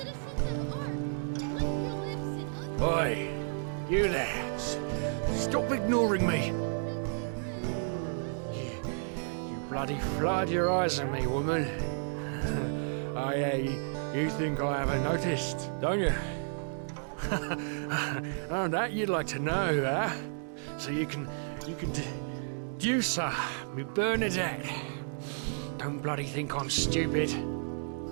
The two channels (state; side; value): silent; left; digital silence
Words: of Ark, lick your lips in Oi, you there. Stop ignoring me. You bloody flood your eyes at me, woman. You think I haven't noticed, don't you? Oh, that you'd like to know, huh? So you can deduce her, me Bernadette. Don't bloody think I'm stupid.